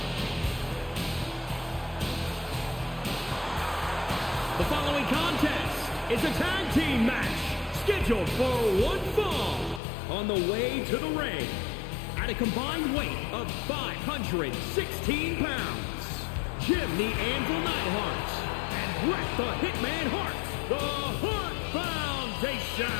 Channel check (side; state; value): right; drops out; at 9.8 s